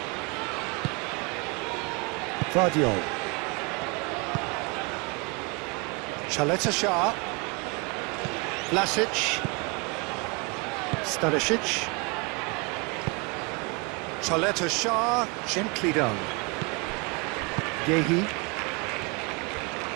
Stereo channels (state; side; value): quieter; left; 29.8 dB